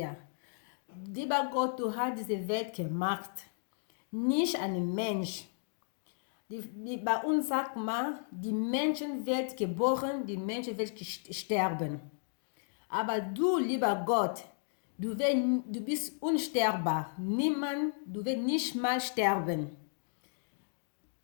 Lieber Gott, du hast diese Welt gemacht, nicht ein Mensch. Bei uns sagt man, die Menschen wird geboren, die Menschen wird sterben. Aber du, lieber Gott, du bist unsterbbar. Niemand, du wirst nicht mal sterben.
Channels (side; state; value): right; silent; digital silence